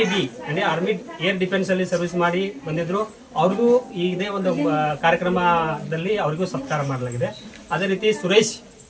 ಅಂದರೆ ಆರ್ಮಿ ಏರ್ ಡಿಫೆನ್ಸ್ ಅಲ್ಲಿ ಸರ್ವಿಸ್ ಮಾಡಿ ಬಂದಿದ್ರು. ಅವ್ರಿಗೂ ಇದೇ ಒಂದು ಕಾರ್ಯಕ್ರಮದಲ್ಲಿ ಅವರಿಗೂ ಸತ್ಕಾರ ಮಾಡಲಾಗಿದೆ. ಅದೇ ರೀತಿ ಸುರೇಶ್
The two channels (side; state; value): both; identical; correlation 1.00